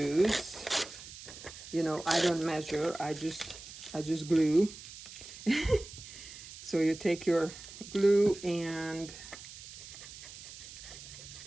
I don't measure, I just glue. So you take your glue and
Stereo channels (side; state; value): right; noise; hiss, 14 dB below the sound